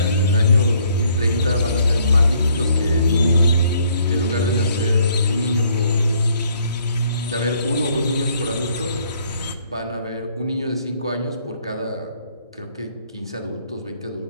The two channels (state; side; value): inverted; both; correlation -0.65